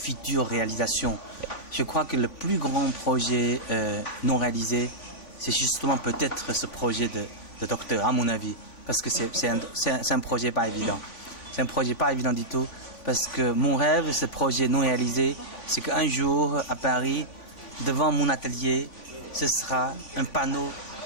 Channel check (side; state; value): right; late; 3.5 ms